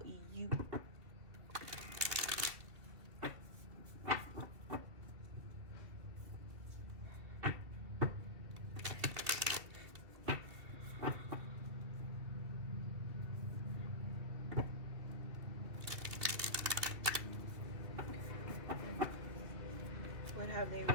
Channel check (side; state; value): left; late; 2.4 ms